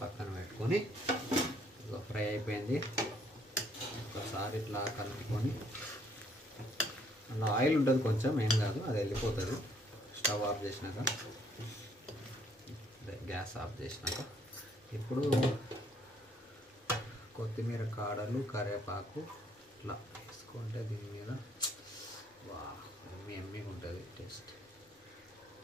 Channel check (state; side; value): normal; both; correlation 0.66